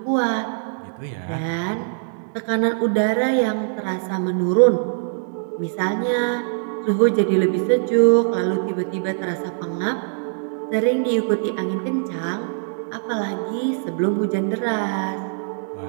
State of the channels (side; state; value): left; silent; digital silence